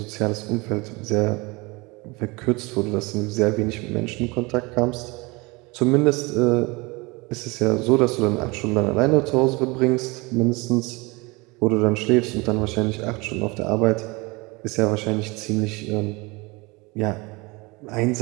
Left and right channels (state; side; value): quieter; left; 25.3 dB